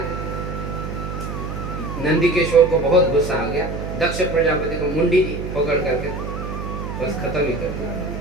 नंदीकेश्वर को बहुत गुस्सा आ गया, दक्ष प्रजापति को मुंडी पकड़ करके बस खत्म ही कर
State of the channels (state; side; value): noise; right; hum, 6 dB below the sound